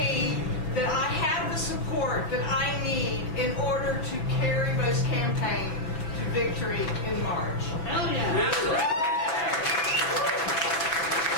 that I have the support that I need in order to carry this campaign to victory in March. Hell yeah.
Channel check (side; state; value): right; late; 6.2 ms